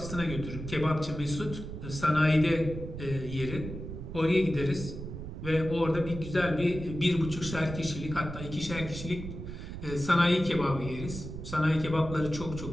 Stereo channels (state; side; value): noise; right; rumble, 9 dB below the sound